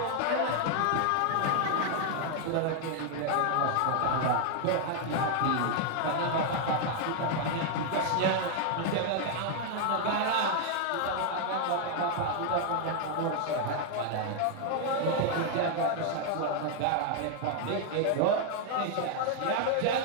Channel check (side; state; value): both; different; correlation 0.00